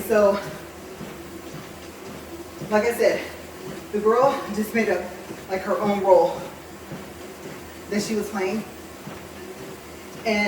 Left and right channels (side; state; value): both; identical; correlation 1.00